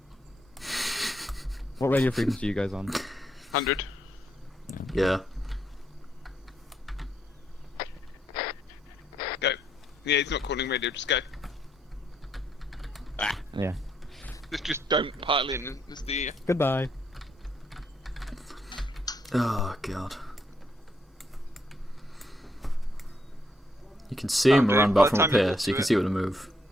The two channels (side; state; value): both; normal; correlation 0.75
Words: What radio frequency are you guys on? 100. Yeah. Go. Yeah, he's not calling radio, just go. Yeah. Just don't pile in as the... Goodbye. Oh god. You can see Oh, him dude, around by back the from up time you here, walk so you through can it. see where to move.